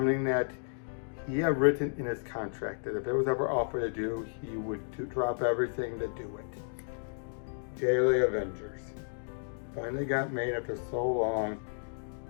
that he had written in his contract that if it was ever offered to do, he would drop everything to do it. Daily Avengers. Finally got made after so long,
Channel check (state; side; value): silent; right; digital silence